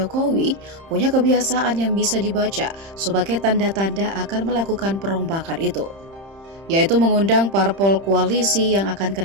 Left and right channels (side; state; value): left; late; 30 ms